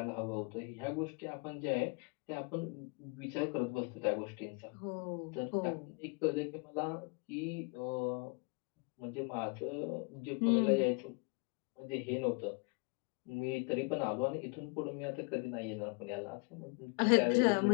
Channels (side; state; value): right; quieter; 34.1 dB